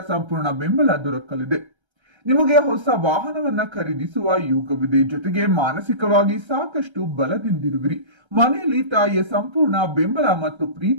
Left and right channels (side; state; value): left; late; 1.3 ms